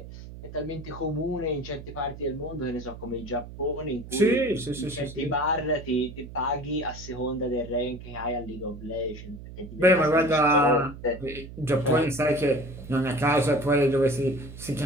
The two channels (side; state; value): right; noise; hum, 13 dB below the sound